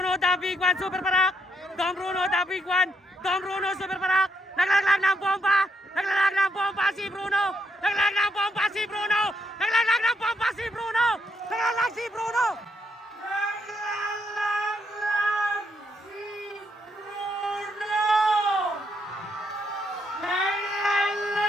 The Big One, Super Parak. Dom Bruno, The Big One. Dom Bruno, Super Parak. Naglalaglag ng bomba. Naglalaglag ng bomba si Bruno. Naglalaglag ng bomba si Bruno. Naglalaglag ng bomba si Bruno. Naglalaglag si Bruno.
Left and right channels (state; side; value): normal; both; correlation 0.77